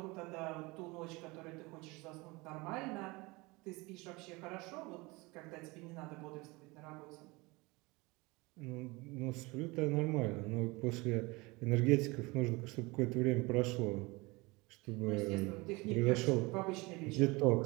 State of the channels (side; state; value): left; quieter; 24.3 dB